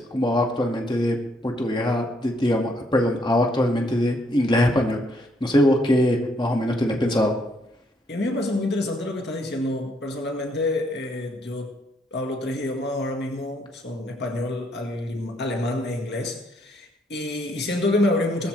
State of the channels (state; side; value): normal; both; correlation 0.71